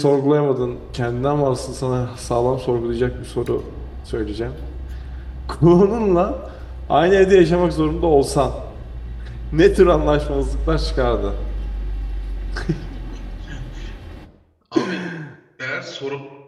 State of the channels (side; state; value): both; identical; correlation 1.00